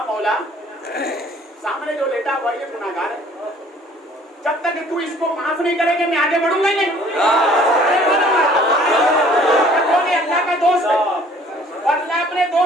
मौला, सामने जो लेटा हुआ ये गुनाहगार है, जब तक तू इसको माफ नहीं करेंगे मैं आगे बढ़ूंगा नहीं। अल्लाह का दोस्त है और अल्लाह अपने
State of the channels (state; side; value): normal; both; correlation 0.55